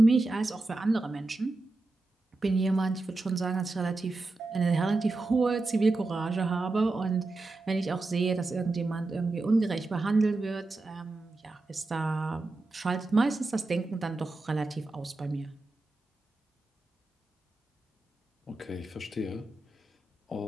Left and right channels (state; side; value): quieter; left; 3.2 dB